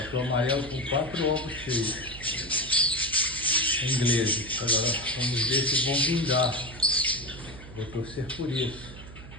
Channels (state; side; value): noise; right; hum, 15 dB below the sound